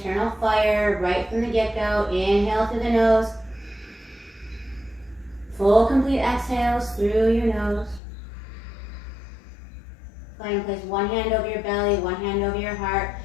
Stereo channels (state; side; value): drops out; right; at 8.0 s